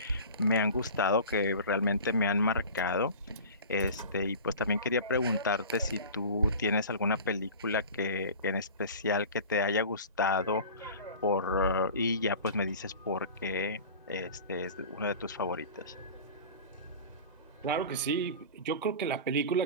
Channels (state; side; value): inverted; both; correlation -0.37